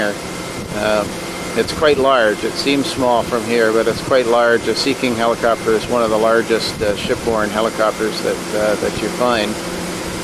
It's quite large. It seems small from here, but it's quite large. A Sea King helicopter is one of the largest shipborne helicopters that you find.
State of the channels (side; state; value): both; identical; correlation 1.00